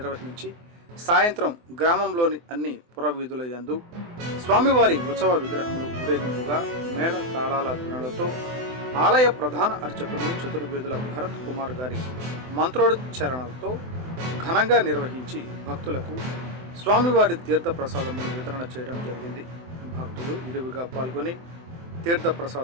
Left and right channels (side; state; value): left; late; 24 ms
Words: సాయంత్రం గ్రామంలోని అన్ని పురవీధుల యందు స్వామివారి ఉత్సవ విగ్రహములు ఊరేగింపుగా మేళ తాళాల ధ్వనులతో ఆలయ ప్రధాన అర్చకులు చతుర్వేదుల భరత్ కుమార్ గారి మంత్రోచ్చరణలతో ఘనంగా నిర్వహించి భక్తులకు స్వామివారి తీర్థ ప్రసాదములు వితరణ చేయడం జరిగింది. భక్తులు విరివిగా పాల్గొని తీర్థ